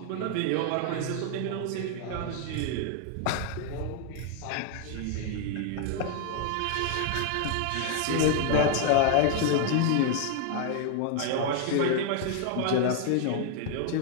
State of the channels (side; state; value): both; different; correlation 0.00